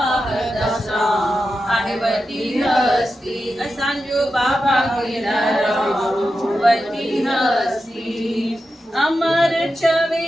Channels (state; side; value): normal; both; correlation 0.90